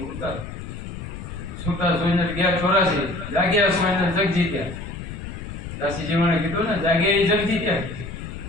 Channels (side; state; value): left; noise; rumble, 9 dB below the sound